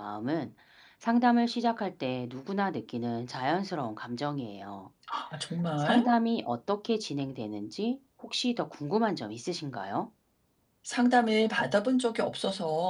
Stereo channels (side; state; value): both; identical; correlation 1.00